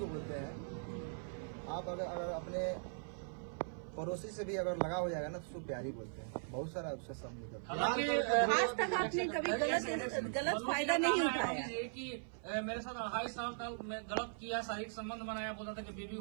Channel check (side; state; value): left; silent; 51 dB below the other